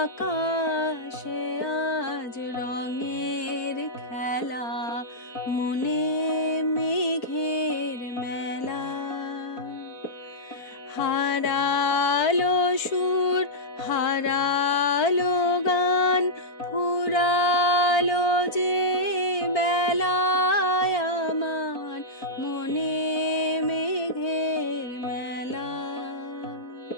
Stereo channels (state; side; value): late; right; 4.5 ms